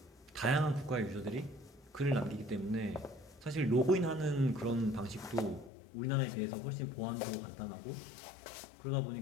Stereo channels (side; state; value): right; drops out; at 5.7 s